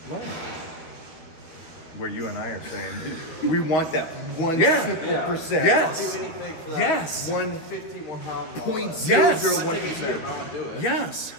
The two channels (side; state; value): right; late; 13 ms